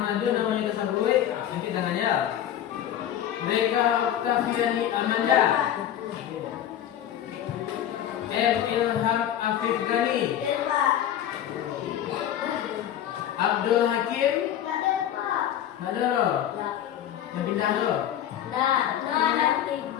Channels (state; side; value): quieter; right; 10.8 dB